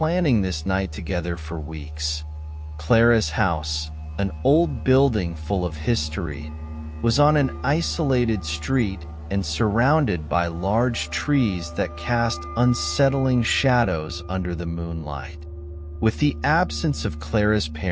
this night together for weeks. Clara's house, an old building full of history, was on an isolated street and surrounded by large trees that cast unsettling shadows under the moonlight. With the absence of Clara's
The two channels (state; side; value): identical; both; correlation 1.00